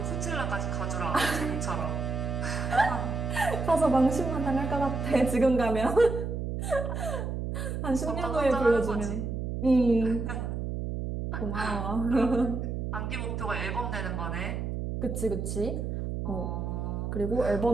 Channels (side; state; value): right; noise; hum, 3 dB below the sound